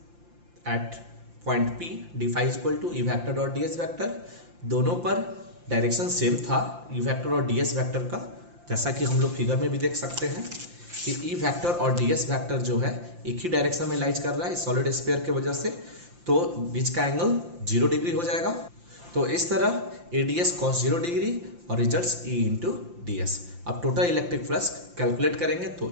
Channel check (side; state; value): left; late; 5.8 ms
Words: at point P d equal to E vector dot ds vector, दोनों पर डायरेक्शन सेम था E वेक्टर और ds वेक्टर का, जैसा कि हम लोग फिगर में भी देख सकते हैं कि E वेक्टर और ds वेक्टर जो है एक ही डायरेक्शन में लाइज कर रहा है सॉलिड स्फीयर के वजह से। तो बीच का एंगल 0 डिग्री हो जाएगा। तो इस तरह ADS cos 0 डिग्री और results E into D S. अब टोटल इलेक्ट्रिक फ्लक्स कैलकुलेट करेंगे